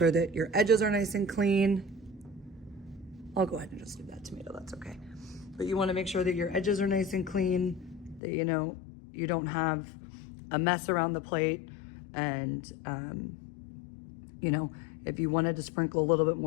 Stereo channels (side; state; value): right; drops out; at 8.2 s